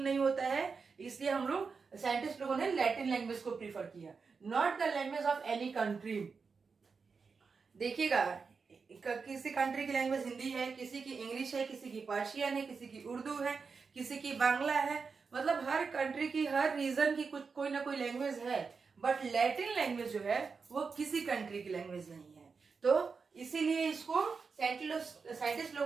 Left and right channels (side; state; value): left; quieter; 5.1 dB